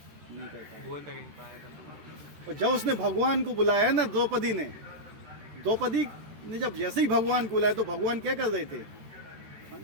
नहीं कर पाया, बोल तक नहीं पाया था। और जब उसने भगवान को बुलाया ना, द्रौपदी ने जब जैसे ही भगवान को बुलाया तो भगवान क्या कर रहे थे?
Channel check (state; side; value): late; left; 13 ms